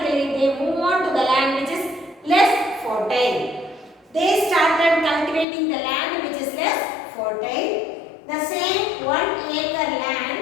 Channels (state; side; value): drops out; right; at 5.5 s